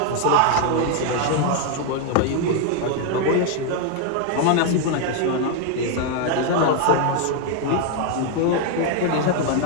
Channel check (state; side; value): different; both; correlation 0.01